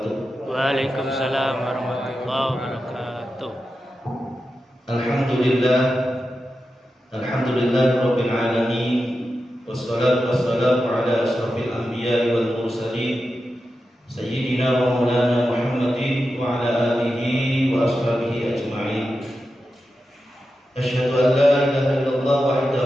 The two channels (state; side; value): normal; both; correlation 0.90